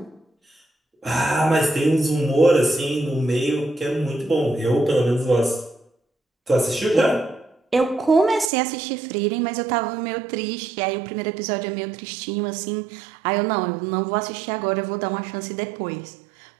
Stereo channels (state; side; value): drops out; left; at 8.5 s